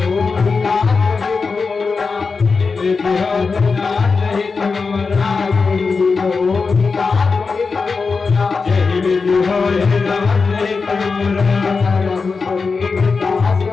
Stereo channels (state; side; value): quieter; right; 4.7 dB